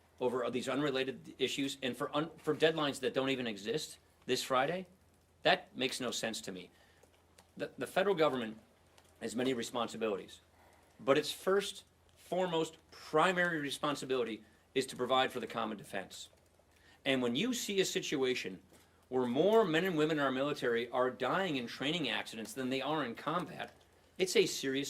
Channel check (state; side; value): identical; both; correlation 1.00